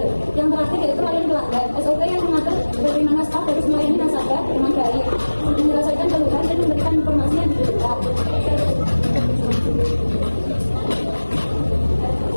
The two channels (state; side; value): inverted; both; correlation -1.00